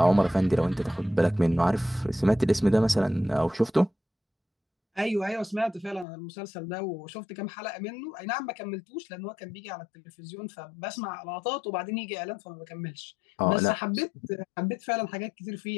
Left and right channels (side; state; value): right; drops out; at 6.1 s